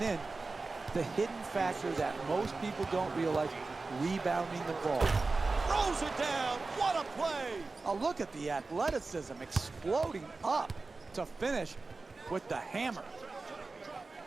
then the hidden factor that most people don't realize, rebounding the ball. Throws it down. What a play. Oh, look at the athleticism exploding up to finish with the hammer.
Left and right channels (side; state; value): left; quieter; 3.7 dB